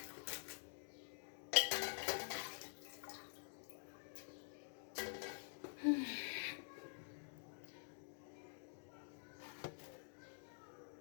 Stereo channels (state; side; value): silent; right; digital silence